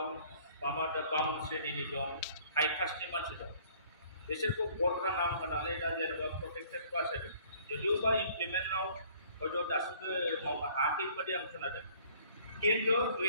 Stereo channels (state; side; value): inverted; both; correlation -0.56